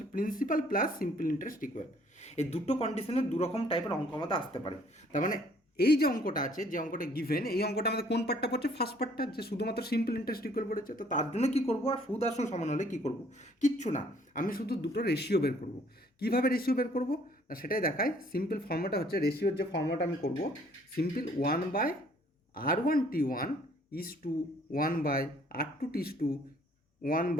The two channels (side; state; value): both; normal; correlation 0.60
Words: principal plus simple interest equal. এই দুটো কন্ডিশনের দুরকম টাইপের অঙ্ক আমাদের আসতে পারে। তার মানে এই যে অঙ্কটা আছে, যে অঙ্কটা গিভেন, এই অঙ্কটা আমাদের কোন পার্টটা পড়ছে? ফার্স্ট পার্টটা, যে শুধুমাত্র সিম্পল ইন্টারেস্ট ইকুয়াল পড়েছে। তো তার জন্য কী করবো, আর সুদ আসল সমান হলে কী করবো? কিচ্ছু না, আমি শুধু দুটো রেশিও বের করবো। কীভাবে রেশিও বের করবো না সেটাই দেখায়। সিম্পল ফর্মুলাটা হচ্ছে, রেশিওর যে ফর্মুলাটা আমি করবো, simple 1/R1T1 is to 1/R2T is to